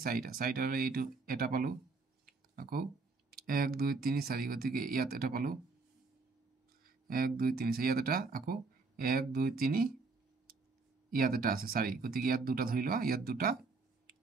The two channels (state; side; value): quieter; left; 4.1 dB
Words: 4টা ললে এইটো এটা পালো আকৌ 1 2 3 4 গতিকে ইয়াত এটা পালো 1 2 3 ইয়াত এটা আকৌ 1 2 3 ইয়াত এটা আছে 4 গতিকে ইয়াত দুটা ধৰি লোৱা ইয়াত দুটা